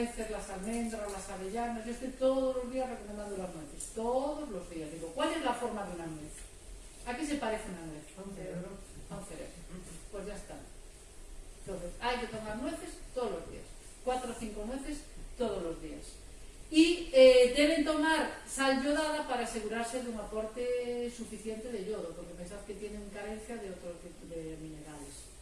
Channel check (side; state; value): both; identical; correlation 1.00